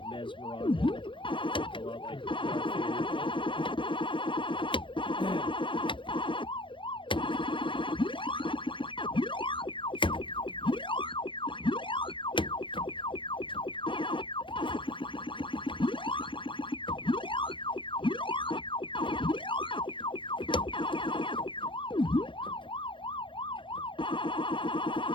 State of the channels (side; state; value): right; late; 0.24 ms